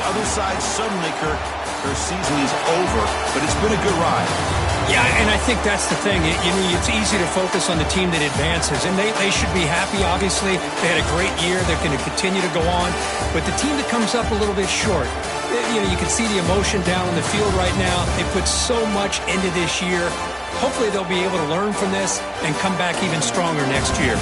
other side suddenly, Kirk, their season is over. But it's been a good ride. Yeah, and I think that's the thing. It's easy to focus on the team that advances, and they should be happy, obviously. They had a great year. They're going to continue to go on. But the team that comes up a little bit short, you can see the emotion down on the field right now. They put so much into this year. Hopefully they'll be able to learn from this and come back even stronger next year.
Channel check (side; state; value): both; identical; correlation 1.00